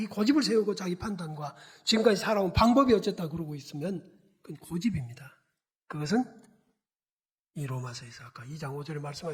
고집을 세우고 자기 판단과 지금까지 살아온 방법이 어쨌다 그러고 있으면 그건 고집입니다. 그것은 이 로마서에서 아까 2장 5절에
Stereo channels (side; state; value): both; identical; correlation 1.00